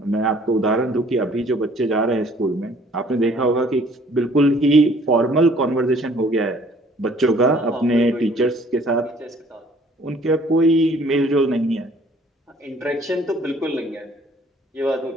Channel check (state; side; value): normal; both; correlation 0.57